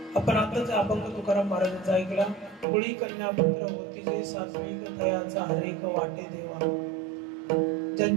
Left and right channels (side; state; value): left; drops out; at 2.7 s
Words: आपण आताच अभंग तुकाराम महाराजांचा ऐकला। कुळी कन्या पुत्र होती जे सात्विक दयाचा हरेक वाटे देवा।